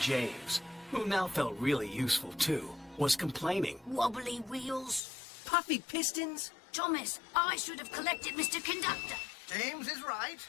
who now felt really useful too, was complaining. Wobbly wheels. Puffy pistons? Thomas, I should have collected Mr. Conductor. James is right,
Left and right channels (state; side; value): drops out; right; at 5.0 s